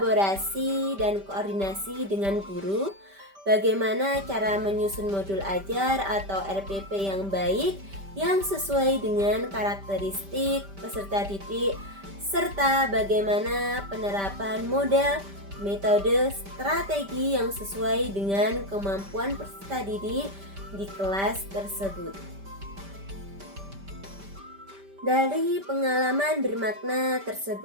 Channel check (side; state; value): left; late; 5.1 ms